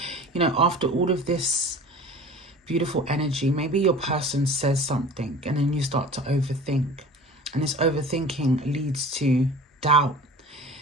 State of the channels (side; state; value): both; normal; correlation 0.41